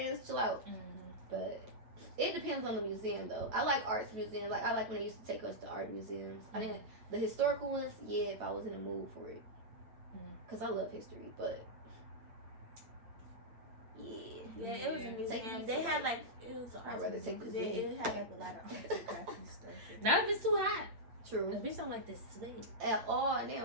chill out. But it depends on the museum, though. I like arts museums. Like I like when they used to take us to art museums. I didn't the historical ones. Yeah, if I was in the mood for it, because I love history. But yeah, it was a museum. They had like it was an I'd art rather museum take the 'cause it Zoom. had like a lot of arts and crafty stuff. Not if it's too hot. True. The bitch don't like this sweat. At all, and they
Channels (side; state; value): left; late; 8.7 ms